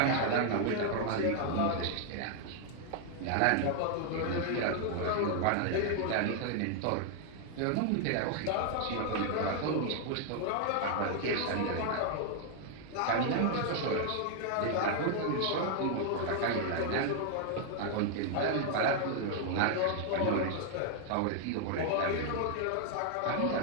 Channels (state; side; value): different; both; correlation 0.00